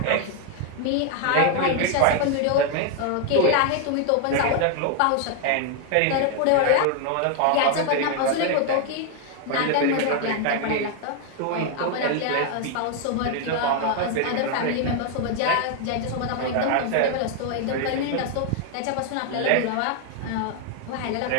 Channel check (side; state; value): both; different; correlation 0.00